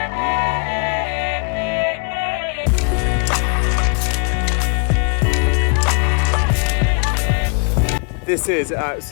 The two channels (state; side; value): quieter; right; 36.3 dB